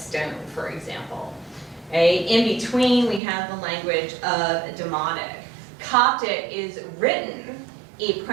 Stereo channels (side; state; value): left; drops out; at 3.2 s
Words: for example. Okay? In between, we have the language of Demotic. Coptic is written